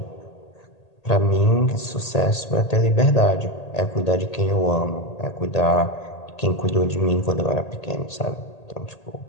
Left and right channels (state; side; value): late; right; 1.8 ms